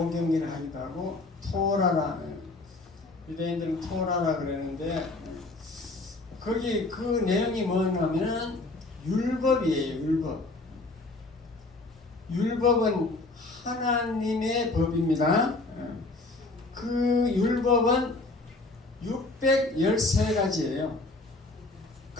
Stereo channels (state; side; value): quieter; right; 3.2 dB